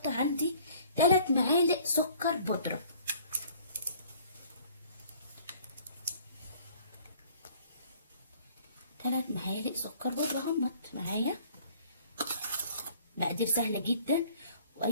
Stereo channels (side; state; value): both; inverted; correlation -0.54